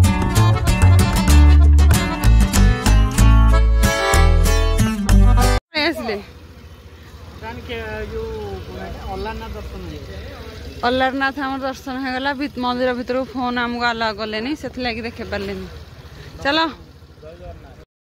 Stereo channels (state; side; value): identical; both; correlation 1.00